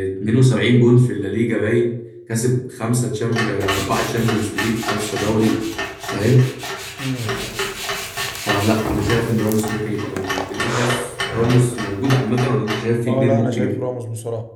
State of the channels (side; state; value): both; identical; correlation 1.00